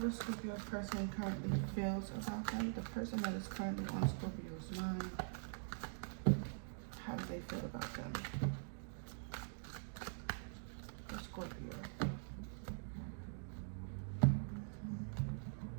Scorpio's person currently feels about them? The person that is currently on Scorpio's mind, how do they feel about them? For Scorpio.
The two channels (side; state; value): left; silent; digital silence